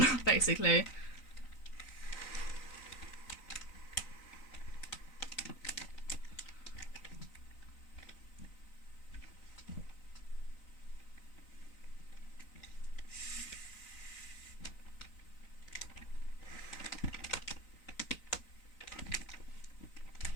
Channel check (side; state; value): right; late; 3.9 ms